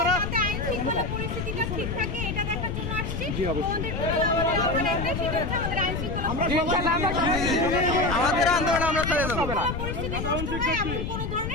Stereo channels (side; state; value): left; noise; rumble, 4 dB below the sound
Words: আমাদের আন্দোলন আমরা চালিয়ে যাবো।